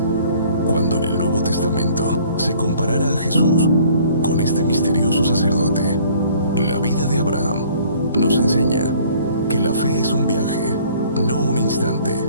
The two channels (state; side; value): inverted; both; correlation -0.55